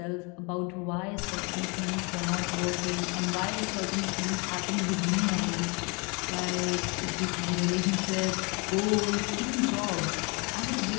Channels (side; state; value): right; quieter; 30.3 dB